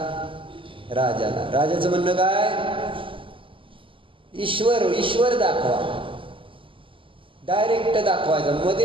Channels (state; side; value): late; left; 0.25 ms